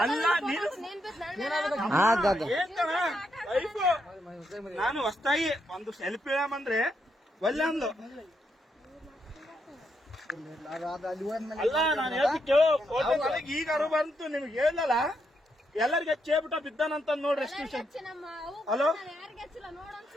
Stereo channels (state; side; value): normal; both; correlation 0.79